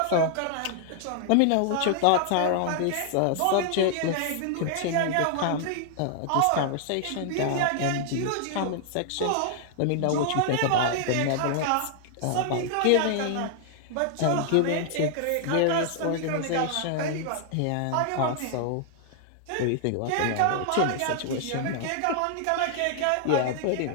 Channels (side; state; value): both; different; correlation 0.00